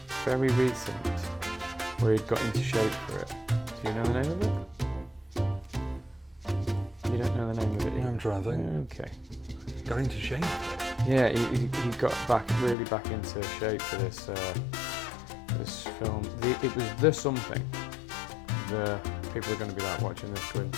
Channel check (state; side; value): drops out; right; at 12.8 s